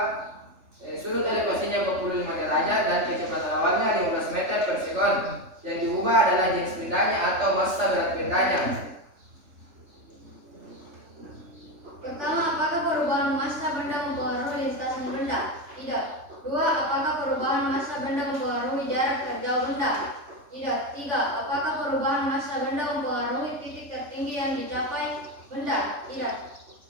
sudut elevasinya 45 derajat dan kecepatan awalnya 15 meter per sekon. Yang diubah adalah jenis bendanya atau massa berat bendanya. Pertama, apakah perubahan massa benda mempengaruhi lintasan benda? Tidak. 2. Apakah perubahan massa benda mempengaruhi jarak terjauh benda? Tidak. 3. Apakah perubahan massa benda mempengaruhi titik tertinggi yang dicapai benda? Tidak.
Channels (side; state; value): left; late; 3.3 ms